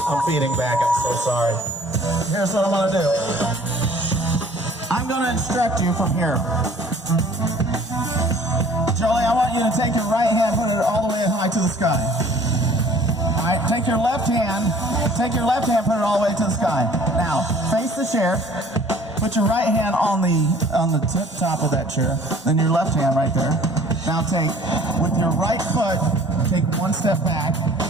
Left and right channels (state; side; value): normal; both; correlation 0.52